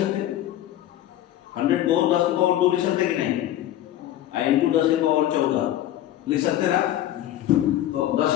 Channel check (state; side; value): quieter; right; 12.9 dB